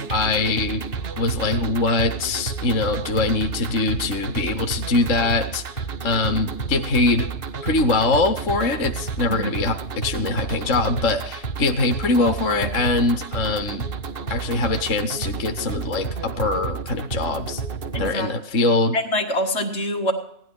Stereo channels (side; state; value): right; late; 3.6 ms